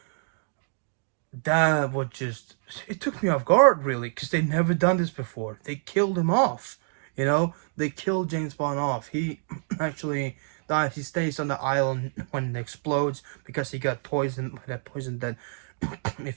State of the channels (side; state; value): left; silent; digital silence